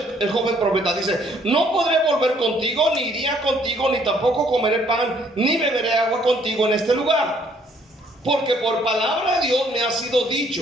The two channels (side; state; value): both; normal; correlation 0.64